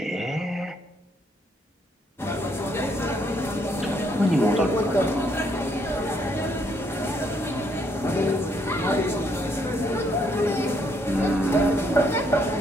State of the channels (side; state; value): both; normal; correlation 0.71